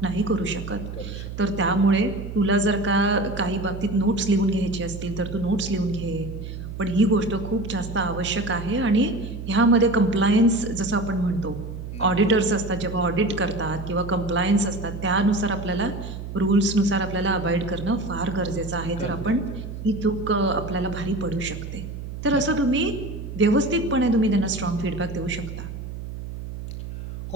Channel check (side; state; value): right; noise; hum, 9 dB below the sound